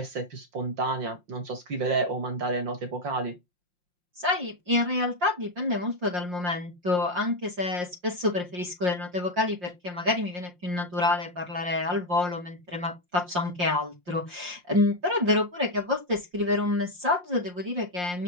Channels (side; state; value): left; late; 5.6 ms